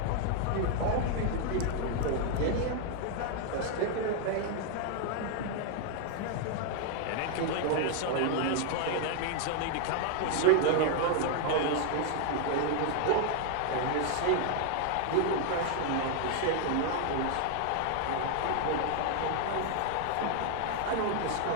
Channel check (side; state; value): both; different; correlation 0.00